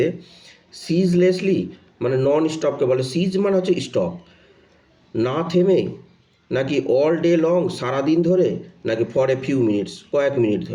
সিজলেসলি মানে নন স্টপকে বলে, সিজ মানে হচ্ছে স্টপ, না থেমে, নাকি অল ডে লং সারাদিন ধরে, নাকি ফর এ ফিউ মিনিটস কয়েক মিনিট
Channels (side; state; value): both; identical; correlation 1.00